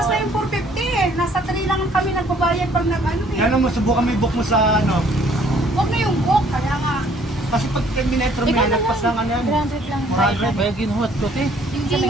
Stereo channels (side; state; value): both; normal; correlation 0.60